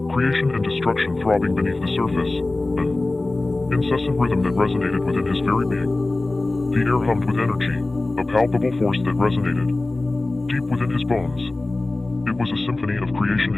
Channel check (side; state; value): right; quieter; 3.0 dB